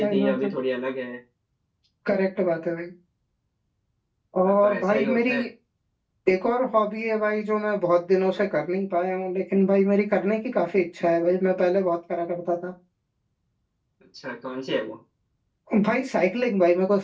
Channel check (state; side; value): identical; both; correlation 1.00